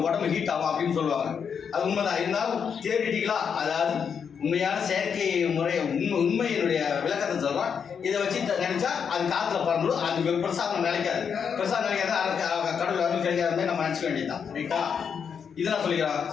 உடம்பு ஹீட் ஆகும் அப்படின்னு சொல்லுவாங்க. அது உண்மைதான். இருந்தாலும் தியரிட்டிக்கலாக, அதாவது உண்மையான செயற்கை முறை உண்மையினுடைய விளக்கத்தை சொல்கிறோம். இதை வச்சு நினைச்சா அது காற்றுல பறந்துடும், அது பிரசாதம் நினைக்காது. பிரசாதம் நினைக்காது, கடவுள் வந்து கிடைக்காத நம்ம நினச்சிக்க வேண்டியதுதான். ரைட்டா? இதெல்லாம் சொல்லிக்கிறான்.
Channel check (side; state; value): right; quieter; 6.9 dB